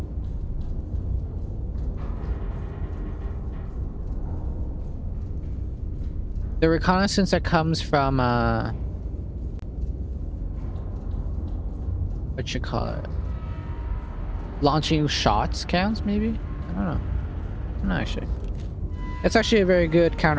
The reconnaissance that comes from, what you call it? Launching shots counts, maybe? I don't know. I'm not actually. It's actually a very good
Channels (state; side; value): identical; both; correlation 1.00